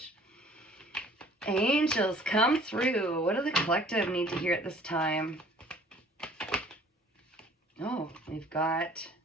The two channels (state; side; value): normal; both; correlation 0.54